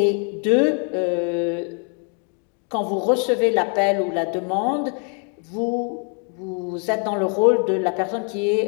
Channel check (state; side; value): quieter; right; 39.7 dB